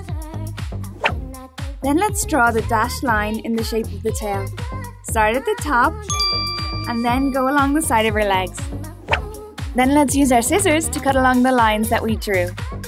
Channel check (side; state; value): both; identical; correlation 1.00